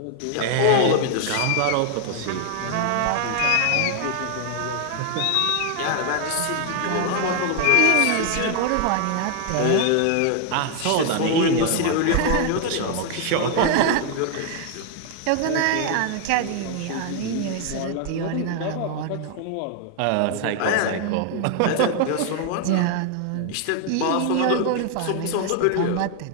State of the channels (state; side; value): different; both; correlation 0.00